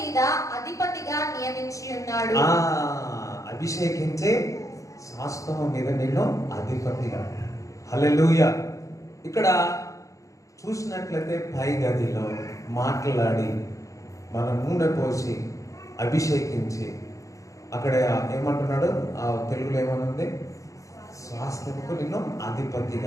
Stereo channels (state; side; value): late; right; 0.16 ms